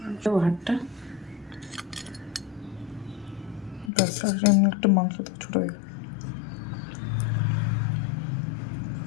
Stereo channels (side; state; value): right; drops out; at 3.9 s